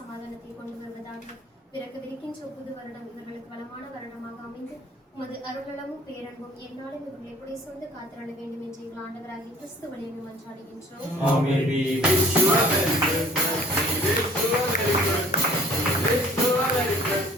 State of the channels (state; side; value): normal; both; correlation 0.53